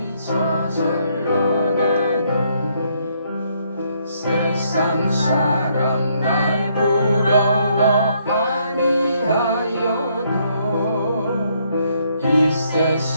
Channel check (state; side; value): inverted; both; correlation -0.71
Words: 저절로 나네. 세상 사람 날 부러워 아니하여도 이